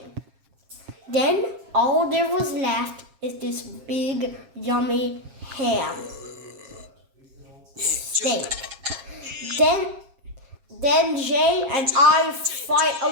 Then all there was left is this big, yummy ham steak. Then Jay and I fight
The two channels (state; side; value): late; left; 7.4 ms